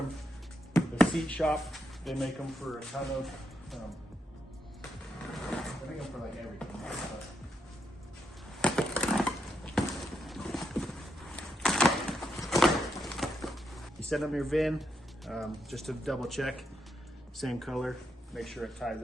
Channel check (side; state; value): both; normal; correlation 0.81